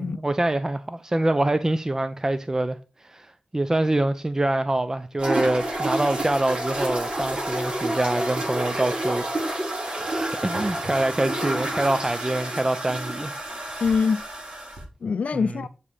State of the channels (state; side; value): normal; both; correlation 0.93